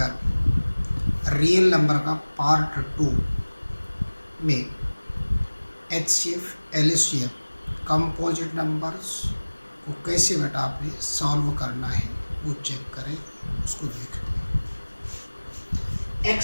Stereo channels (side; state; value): both; inverted; correlation -1.00